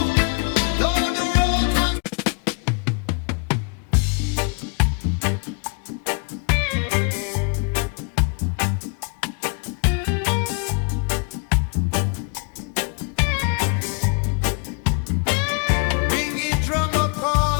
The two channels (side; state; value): right; quieter; 36.3 dB